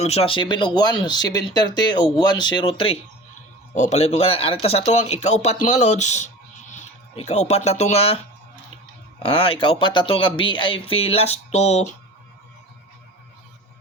ha 7 og 1, 730 og 103. O palihog ko kana arita sa tuwang ikaupat mga lods. Ikaupat na to nga ikaupat na to nga VIP last to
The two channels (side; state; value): both; normal; correlation 0.36